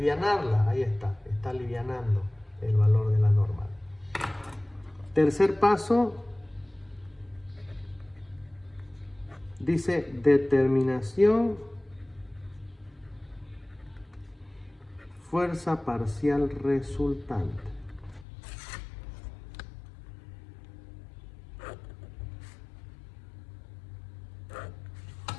Ahí está alivianando el valor de la normal. Tercer paso, dice determinación fuerza parcial resultante.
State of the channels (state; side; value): drops out; right; at 18.2 s